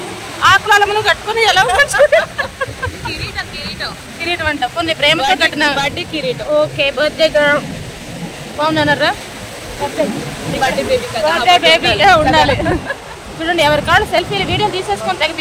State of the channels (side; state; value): both; identical; correlation 1.00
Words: ఆకులను కట్టుకుని ఎలా కిరీటం అంట కొన్ని ప్రేమతో కట్టిన బర్త్డే కిరీటం. ఓకే బర్త్డే గర్ల్ బాగున్నానరా. బర్త్డే బేబీ ఉండాలి. చూడండి ఎవరి కాళ్ళు సెల్ఫీలు వీడియో తీసేసుకొని తెగ